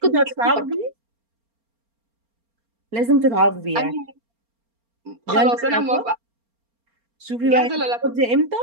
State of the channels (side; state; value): left; late; 4.3 ms